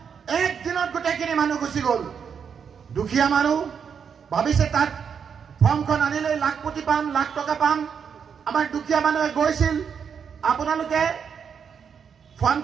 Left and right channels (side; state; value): left; quieter; 6.9 dB